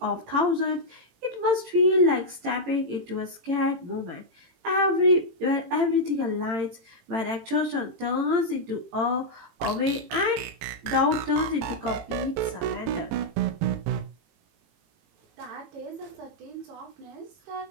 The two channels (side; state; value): left; late; 18 ms